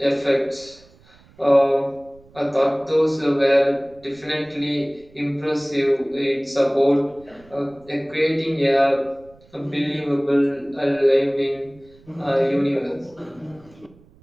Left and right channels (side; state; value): right; noise; rumble, 27 dB below the sound